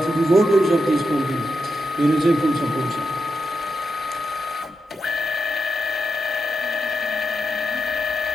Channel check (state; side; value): normal; both; correlation 0.87